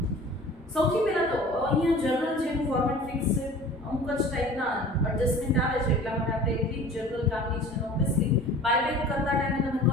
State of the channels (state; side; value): normal; both; correlation 0.43